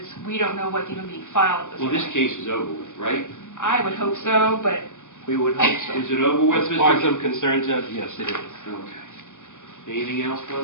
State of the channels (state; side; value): late; right; 0.86 ms